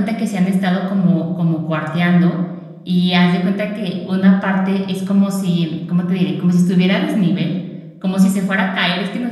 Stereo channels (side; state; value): both; identical; correlation 1.00